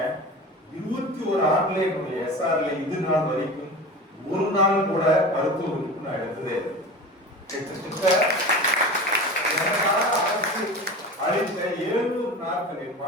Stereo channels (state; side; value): normal; both; correlation 0.32